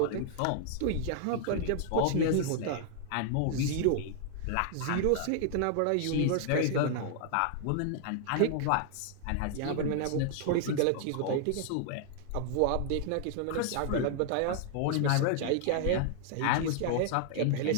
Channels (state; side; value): different; both; correlation -0.01